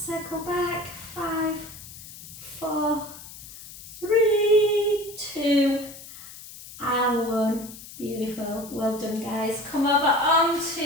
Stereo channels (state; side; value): noise; left; hiss, 15 dB below the sound